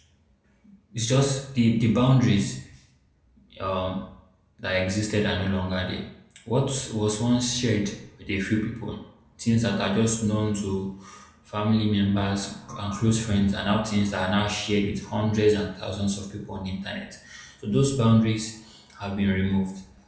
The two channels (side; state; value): both; identical; correlation 1.00